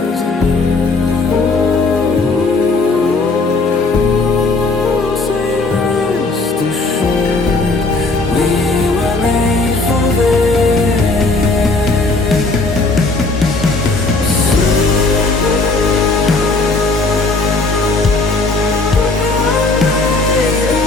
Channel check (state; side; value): quieter; right; 3.5 dB